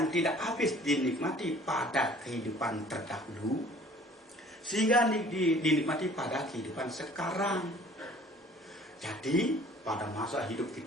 tidak habis dinikmati pada kehidupan terdahulu sehingga dinikmati pada kehidupan sekarang. Jadi pada masa hidup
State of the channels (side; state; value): both; normal; correlation 0.52